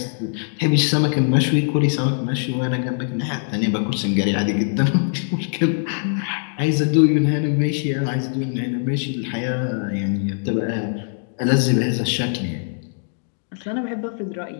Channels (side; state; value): right; silent; digital silence